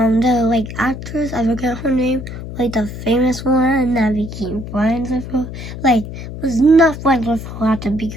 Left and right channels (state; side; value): noise; left; hum, 9 dB below the sound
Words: actress, I forget her name, the famous one that became friends with her, was not friends with her at the